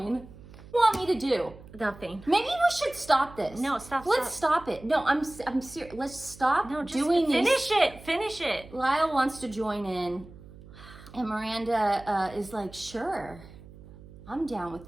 What do you want me to do? Nothing. Maybe we should stop this. No, stop. Let's stop it. No, I'm serious. Let's stop doing this. Finish it. Lyle wants to join in, and Miranda is like, sure, I'm down with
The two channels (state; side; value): noise; right; hum, 19 dB below the sound